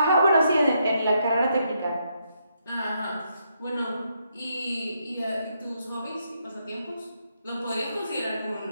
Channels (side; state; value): both; inverted; correlation -0.78